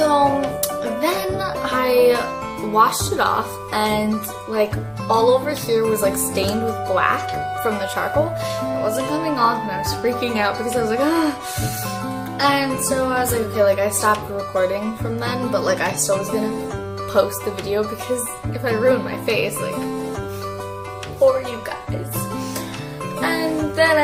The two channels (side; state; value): both; identical; correlation 1.00